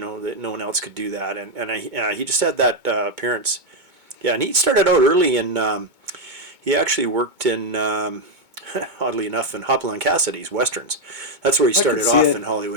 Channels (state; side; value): late; left; 2.2 ms